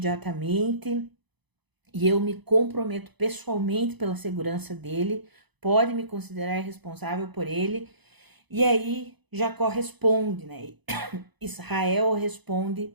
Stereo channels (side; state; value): left; late; 0.99 ms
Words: e eu me comprometo pessoalmente pela segurança dele, pode me considerar responsável por ele. E aí Jacó responde, né? Israel